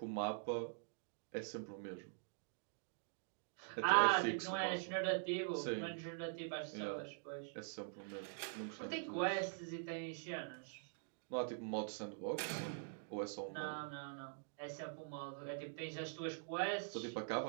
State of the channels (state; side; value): silent; left; digital silence